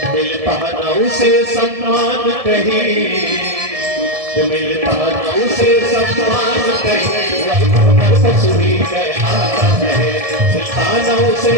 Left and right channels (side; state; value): left; late; 1.7 ms